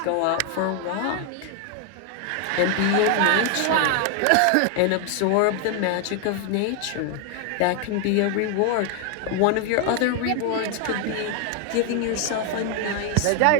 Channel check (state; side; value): different; both; correlation 0.00